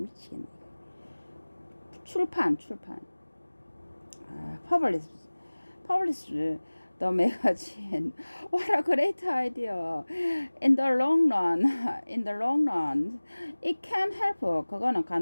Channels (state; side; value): inverted; both; correlation -1.00